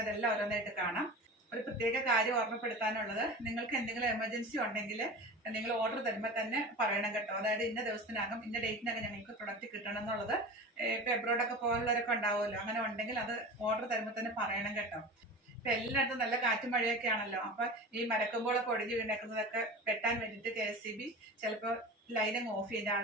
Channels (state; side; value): normal; both; correlation 0.33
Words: അതെല്ലാം ഓരോന്നായിട്ട് കാണാം. ഒരു പ്രത്യേക കാര്യം ഓർമ്മപ്പെടുത്താനുള്ളത്, നിങ്ങൾക്ക് എന്തെങ്കിലും എമർജൻസി ഉണ്ടെങ്കിൽ നിങ്ങൾ ഓർഡർ തരുമ്പോൾ തന്നെ പറയണം കേട്ടോ. അതായത് ഇന്ന ദിവസത്തിനകം ഇന്ന ഡേറ്റിനകം ഞങ്ങൾക്ക് പ്രൊഡക്റ്റ് കിട്ടണം എന്നുള്ളത്. ഇപ്പൊ എബ്രോഡൊക്കെ പോലുള്ളവരൊക്കെ ഉണ്ടാവുമല്ലോ, അങ്ങനെ ഉണ്ടെങ്കിൽ അത് ഓർഡർ തരുമ്പോൾ തന്നെ പറയണം കേട്ടോ. ഇപ്പൊ എല്ലായിടത്തും നല്ല കാറ്റും മഴയൊക്കെ ആണല്ലോ. അപ്പൊ ഈ മരക്കൊമ്പുകളൊക്കെ ഒടിഞ്ഞു വീണേക്കുന്നതൊക്കെ വെട്ടാൻ വേണ്ടിയിട്ട് KSEB ചിലപ്പോൾ ലൈനിങ് ഓഫ് ചെയ്യും.